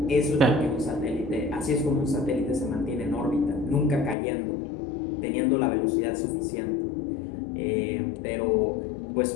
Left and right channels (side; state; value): right; drops out; at 4.2 s